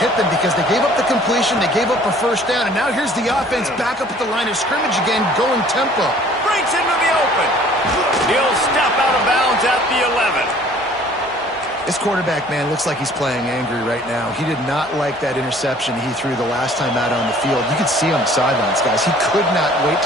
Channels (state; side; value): normal; both; correlation 0.54